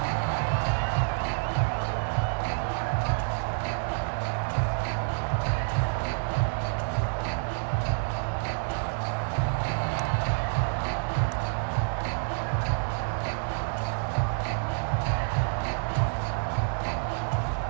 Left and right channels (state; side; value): silent; left; digital silence